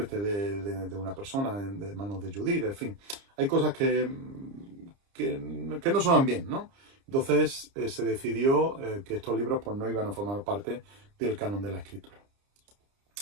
de una persona de manos de Judí, en fin. Hay cosas que no suenan bien, ¿no? Entonces, se decidió que estos libros pues no iban a formar parte del canon de la Escritura.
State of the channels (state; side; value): late; left; 30 ms